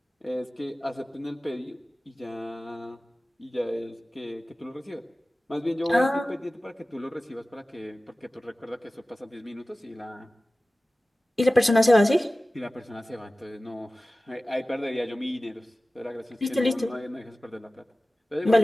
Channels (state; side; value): normal; both; correlation 0.96